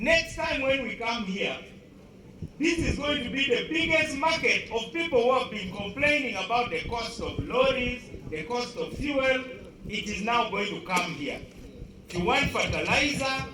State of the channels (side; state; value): both; identical; correlation 1.00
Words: time when we come here, this is going to be the biggest market of people who have been complaining about the cost of lorries, the cost of fuel. It is now going to come here. If you want fertilizer,